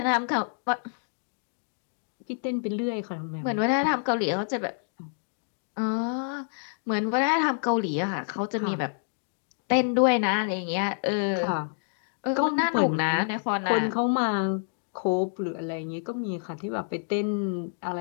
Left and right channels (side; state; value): right; silent; digital silence